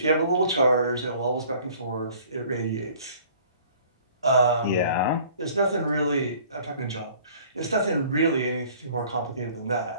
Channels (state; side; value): inverted; both; correlation -0.53